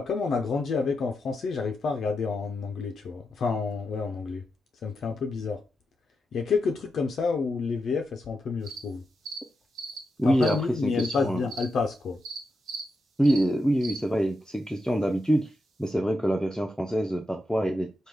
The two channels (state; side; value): normal; both; correlation 0.87